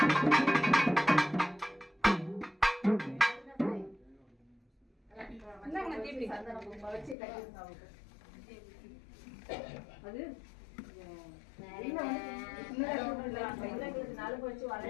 அது நலுங்கு வச்சு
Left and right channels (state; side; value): drops out; right; at 7.2 s